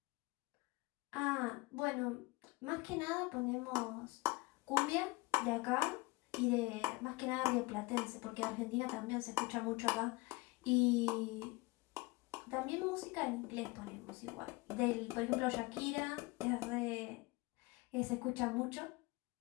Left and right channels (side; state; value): right; quieter; 23.2 dB